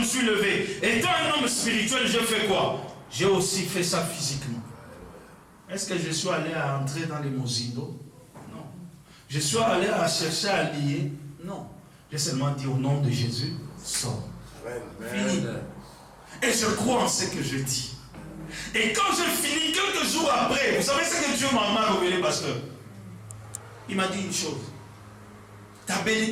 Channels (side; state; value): both; identical; correlation 1.00